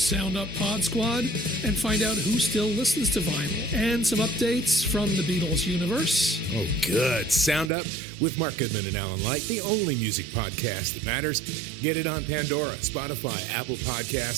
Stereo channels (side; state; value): left; drops out; at 7.7 s